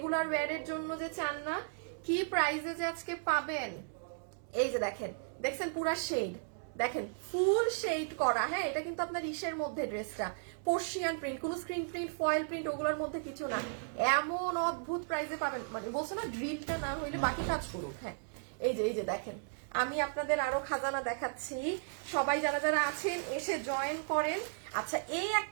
ওয়্যারের জন্য যে চান না, কি প্রাইসে যে আজকে পাবেন। এই যে দেখেন, দেখছেন পুরা শেড, দেখেন ফুল শেড করা। হ্যাঁ, এটা কিন্তু আপনার ইসের মধ্যে ড্রেসটা পার্সিয়ান প্রিন্ট, কোনো স্ক্রিন প্রিন্ট ফয়েল প্রিন্ট ওগুলোর মধ্যে কিছু না। এমন অদ্ভুত প্রাইসে পাবেন, মানে বলছো না ড্রিলটা না হইলে বাকি কাজ করুক। হ্যাঁ, এই যে দেখেন, আমি আপনাদের আরো খাজানা দেখাচ্ছি। সবাই যারা যারা আছেন এসে জয়েন করেন। আচ্ছা, এই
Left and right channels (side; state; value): left; silent; digital silence